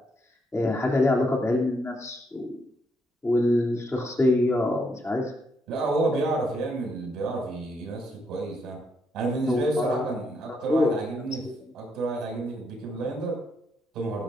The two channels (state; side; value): normal; both; correlation 0.76